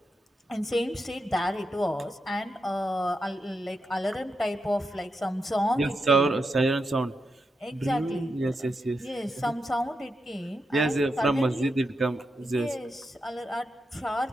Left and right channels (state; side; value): normal; both; correlation 0.86